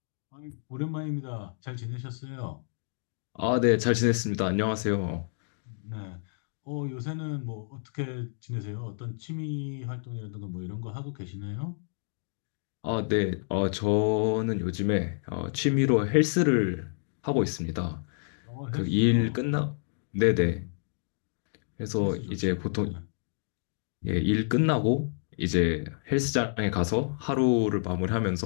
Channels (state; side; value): silent; right; digital silence